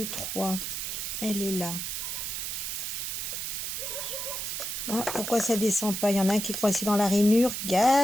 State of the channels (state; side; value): noise; right; hiss, 3 dB below the sound